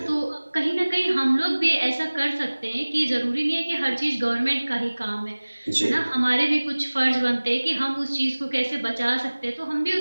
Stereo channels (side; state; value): both; inverted; correlation -1.00